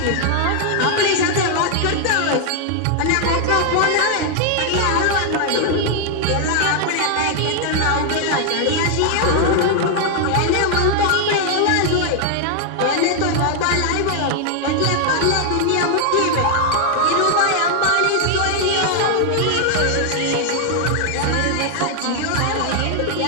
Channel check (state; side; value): different; both; correlation 0.00